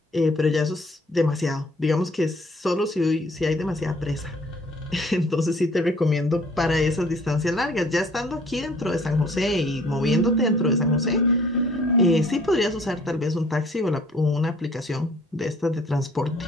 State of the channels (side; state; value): both; normal; correlation 0.56